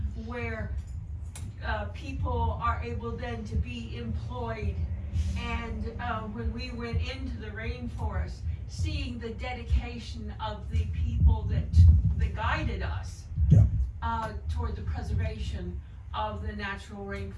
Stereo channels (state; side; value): identical; both; correlation 1.00